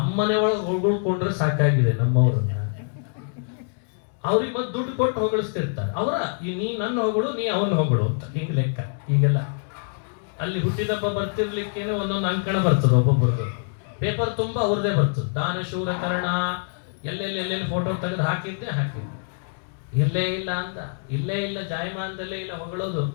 ಒಳಗೆ ಹೊಗಳ್ಕೊಂಡ್ರೆ ಸಾಕಾಗಿದೆ ನಮ್ಮವ್ರನ್ನ. ಅವ್ರಿಗೆ ಮತ್ತೆ ದುಡ್ಡು ಕೊಟ್ಟು ಹೊಗಳಿಸ್ತಿರ್ತಾರೆ. ನೀ ನನ್ನ ಹೊಗಳು, ನೀ ಅವನ ಹೊಗಳು ಅಂತ ಹಿಂಗ್ ಲೆಕ್ಕ. ಈಗೆಲ್ಲ ಅಲ್ಲಿ ಹುಟ್ಟಿದಬ್ಬ ಬರ್ತಿರ್ಲಿಕ್ಕೇನೆ ಒಂದೊಂದು ಅಂಕಣ ಬರ್ತದೆ ಒಬ್ಬೊಬ್ಬರಿಗೆ. ಪೇಪರ್ ತುಂಬಾ ಅವ್ರದೇ ಬರ್ತದೆ. ದಾನ ಶೂರ ಕರ್ಣ ಎಲ್ಲೆಲ್ಲಿ ಫೋಟೋ ತೆಗೆದು ಹಾಕಿದ್ದೆ. ಇಲ್ಲೇ ಇಲ್ಲ ಅಂದ, ಇಲ್ಲೇ ಇಲ್ಲ ಜಾಯಮಾನದಲ್ಲೇ ಇಲ್ಲ ಹೊಗಳೋದು.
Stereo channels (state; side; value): silent; right; digital silence